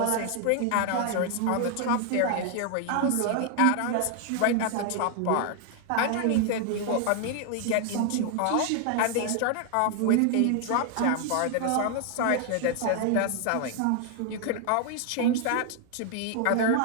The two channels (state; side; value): different; both; correlation 0.00